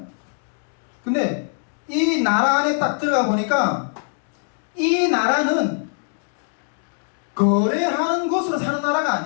근데 이 나라 안에 딱 들어가 보니까 이 나라는 거래하는 것으로 사는 나라가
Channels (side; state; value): right; silent; 57 dB below the other